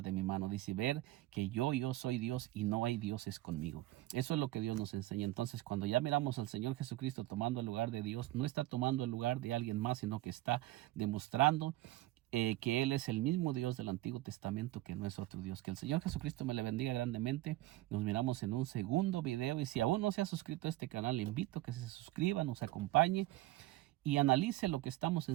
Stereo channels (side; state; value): left; quieter; 17.1 dB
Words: de mi mano. Dice: ver que yo soy Dios y no hay dioses conmigo. Eso es lo que Dios nos enseña. Entonces, cuando ya miramos al Señor Jesucristo tomando el lugar de Dios, no está tomando el lugar de alguien más, sino que está demostrando que Él es el mismo Dios del Antiguo Testamento, que no es otro Dios. Que el Señor Jesucristo me le bendiga grandemente. Nos miramos en un segundo video, y si aún no se ha suscrito a este canal, le invito a que se suscriba, nos acompañe, y analice lo que estamos